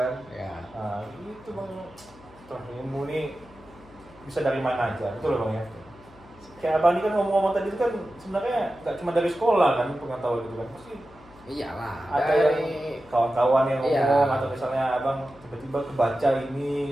Ya. Itu bang, ilmu ini bisa dari mana aja, betul loh bang ya. Kayak abang ini kan ngomong-ngomong tadi itu kan sebenarnya nggak cuma dari sekolah kan pengetahuan itu kan, pasti Iyalah. ada Dari yang kawan-kawan yang Iya. ngomong atau misalnya abang tiba-tiba kebaca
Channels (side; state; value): left; noise; hum, 24 dB below the sound